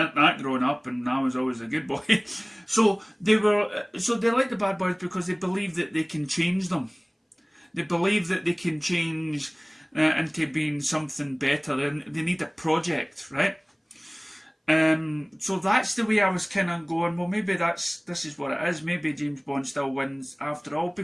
that growing up, and I was always a good boy. So they like the bad boys because they believe that they can change them. They believe that they can change into being something better. They need a project, right? So that's the way I was kind of going, well, maybe this is what it is. Maybe James Bond still wins after all,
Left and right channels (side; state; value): both; identical; correlation 1.00